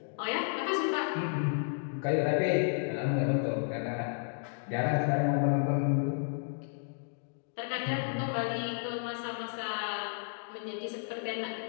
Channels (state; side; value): silent; right; digital silence